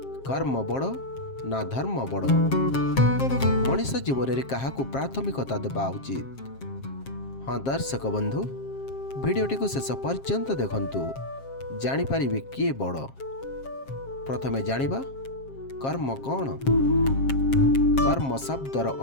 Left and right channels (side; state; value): right; late; 7.5 ms